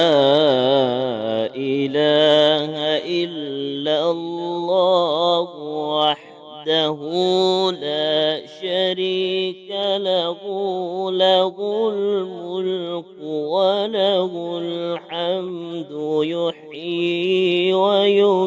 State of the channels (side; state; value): both; identical; correlation 1.00